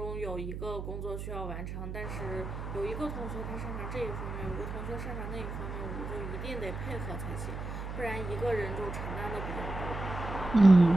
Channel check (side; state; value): right; noise; hum, 6 dB below the sound